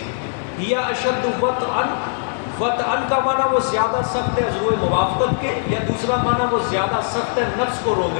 ہی اشد وطئا، وطئا کا معنی وہ زیادہ سخت ہے عضو موافقت کے، یا دوسرا معنی وہ زیادہ سخت ہے نفس کو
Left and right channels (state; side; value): silent; right; digital silence